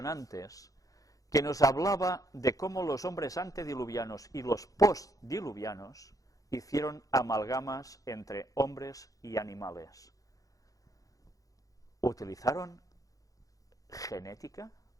que nos hablaba de cómo los hombres antediluvianos y los postdiluvianos hicieron amalgamas entre hombres y animales. Utilizaron genética,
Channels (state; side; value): late; right; 0.17 ms